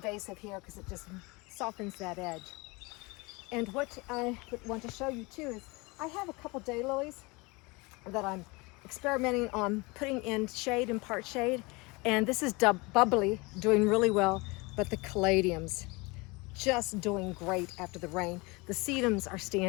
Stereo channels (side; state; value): right; quieter; 25.8 dB